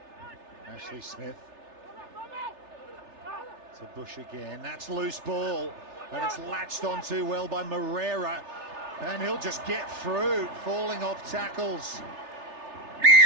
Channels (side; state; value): left; late; 3.3 ms